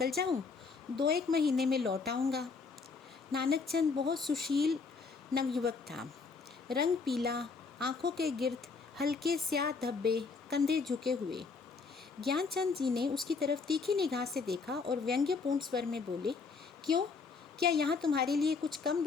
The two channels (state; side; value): quieter; right; 4.7 dB